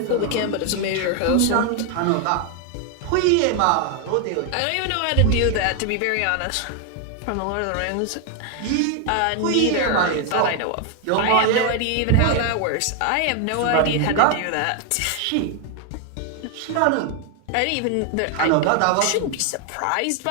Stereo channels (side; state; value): both; different; correlation 0.01